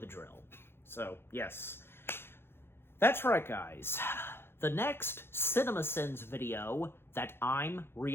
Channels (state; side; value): late; right; 0.11 ms